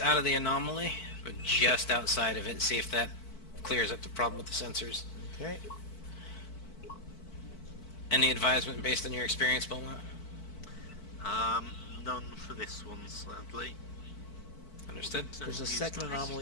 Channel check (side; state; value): right; late; 4.5 ms